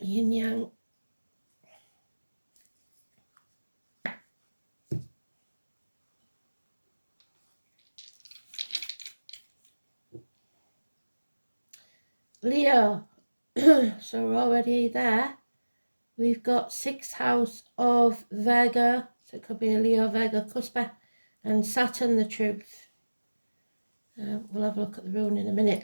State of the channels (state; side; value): inverted; both; correlation -1.00